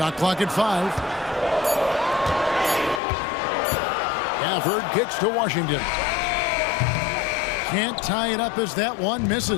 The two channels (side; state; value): right; drops out; at 3.0 s